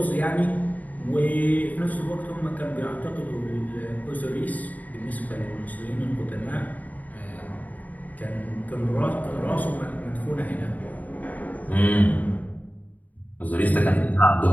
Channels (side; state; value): right; late; 0.076 ms